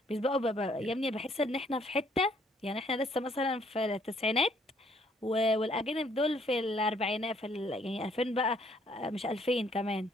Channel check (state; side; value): normal; both; correlation 0.65